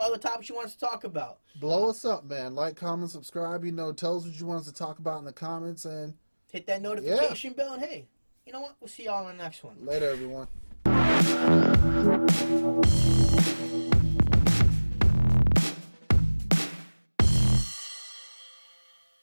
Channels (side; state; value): both; inverted; correlation -1.00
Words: topics you want us to talk about. Blow us up, man. Like, comment, subscribe. Tell us what you want us to talk about in the comments, and hit that notification bell. And hey, you know what? We'll see y'all in the next one. Later, everyone.